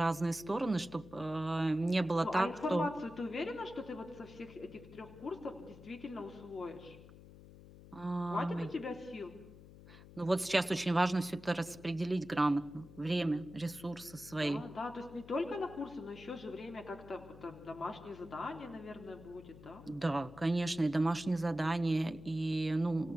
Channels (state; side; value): noise; left; hum, 18 dB below the sound